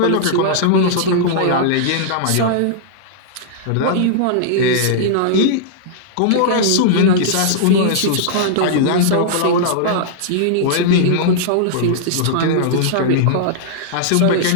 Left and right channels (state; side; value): different; both; correlation -0.02